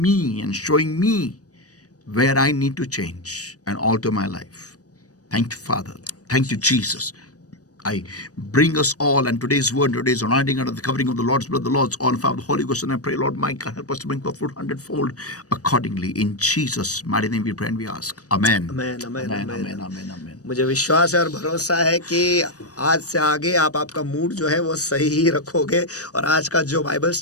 and showing me where I need to change and alter my life. Thank you, Father. Thank you, Jesus. I bring us all and today's word, today's anointing under the covering of the Lord's blood, the Lord's oil, Father, the Holy Ghost, and I pray, Lord, my God, help us to bring forth fruit hundredfold accordingly. In Jesus' mighty name we pray and we ask. Amen. Amen, amen, Amen, amen. amen, amen, amen. मुझे विश्वास है और भरोसा है कि आज से आगे आप आपका मूड जो है वो सही ही रखोगे और आज का जो बाइबल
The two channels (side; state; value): right; late; 0.67 ms